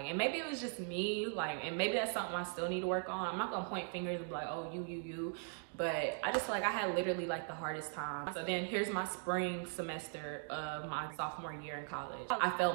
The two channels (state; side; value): silent; left; 51 dB below the other